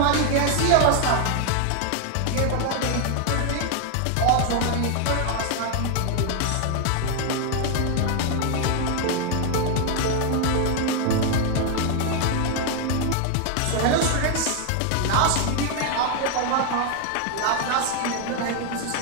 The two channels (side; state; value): both; different; correlation 0.00